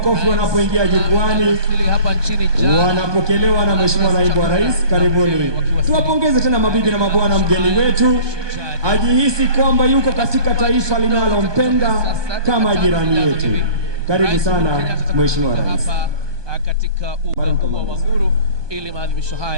wanapoingia jukwani, wanapokelewa na Mheshimiwa Naibu wa Rais. Karibuni. Tuwapongeze tena mabibi na mabwana, mgeni wetu ajihisi kwamba yuko katika taifa linalompenda kama jirani yetu. Karibu sana Mheshimiwa Rais katika uga wa Uhuru ili maadhimisho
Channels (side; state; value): left; late; 1.2 ms